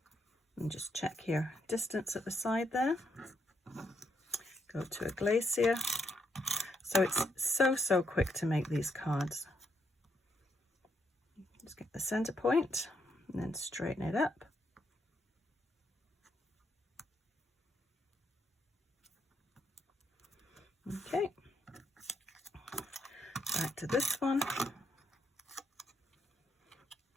And just check your distance at the side there. Go to a Glacier. So it's so quick to make these cards. Just get the center point and then straighten it up. Okay, back to this one.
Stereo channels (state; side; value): normal; both; correlation 0.77